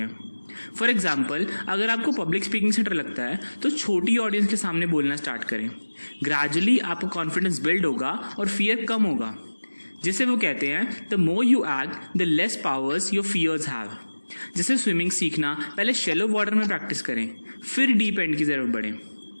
फॉर एग्जाम्पल, अगर आपको पब्लिक स्पीकिंग से डर लगता है तो छोटी ऑडियंस के सामने बोलना स्टार्ट करें। ग्रेजुअली आपको कॉन्फिडेंस बिल्ड होगा और फियर कम होगा। जिसे वो कहते हैं the more you act the less powers your fears have. जैसे स्विमिंग सीखना, पहले शैलो वाटर में प्रैक्टिस करें, फिर डीप एंड की जरूरत पड़े।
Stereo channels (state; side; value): inverted; both; correlation -1.00